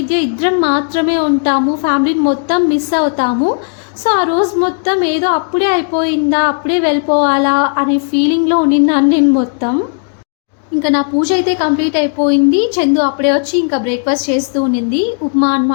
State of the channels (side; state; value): right; silent; 65 dB below the other